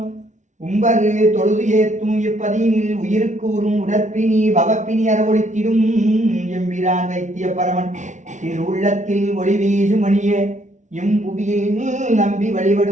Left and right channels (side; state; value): left; late; 0.36 ms